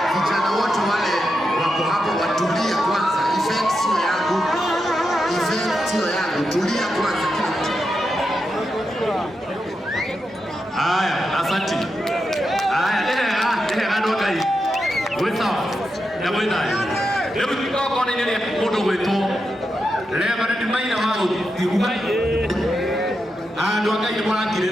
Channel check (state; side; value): normal; both; correlation 0.87